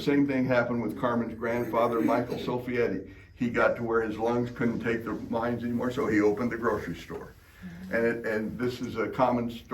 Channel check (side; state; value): both; identical; correlation 1.00